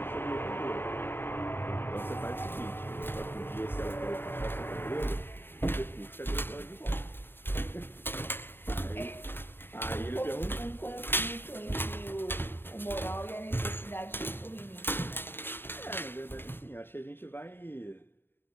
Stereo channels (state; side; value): late; right; 0.10 ms